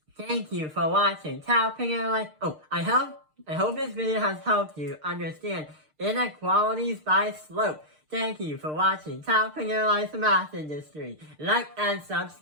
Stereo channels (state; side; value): late; left; 6.6 ms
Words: Thank you for watching. I hope this video has helped you understand inequalities by slope. Thank you for watching Top Fingerlines Math Industry. Like and